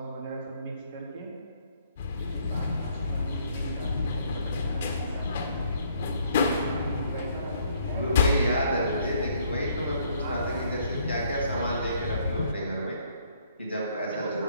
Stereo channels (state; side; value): inverted; both; correlation -0.66